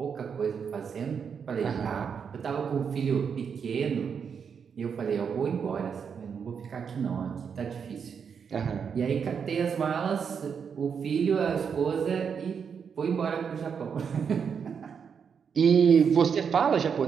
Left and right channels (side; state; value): left; quieter; 6.7 dB